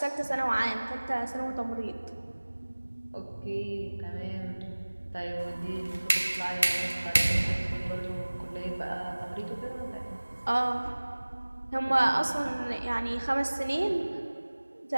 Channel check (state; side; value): inverted; both; correlation -1.00